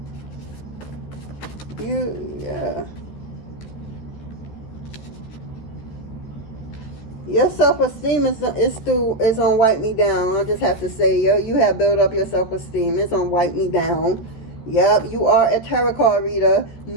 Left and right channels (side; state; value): right; late; 14 ms